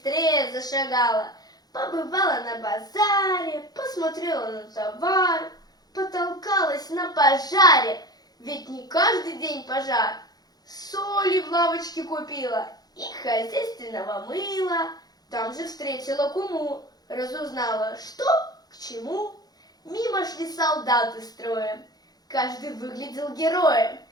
зашагала. Побывала на базаре, посмотрела на товар, потолкалась на пожаре, ведь не каждый день пожар. Соли в лавочке купила и хозяйственного мыла. Там же встретила куму, разузнала, что к чему. Мимо шли солдаты строем, каждый выглядел героем.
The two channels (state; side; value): late; right; 0.19 ms